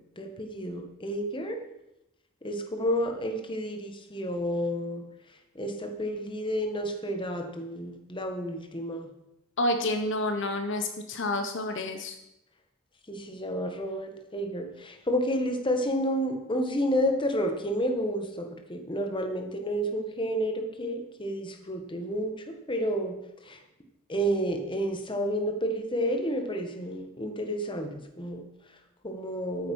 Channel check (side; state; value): both; normal; correlation 0.35